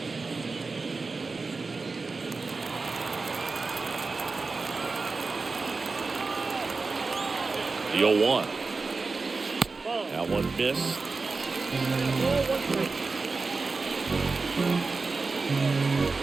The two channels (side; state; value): left; quieter; 4.1 dB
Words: The 0-1. That one missed.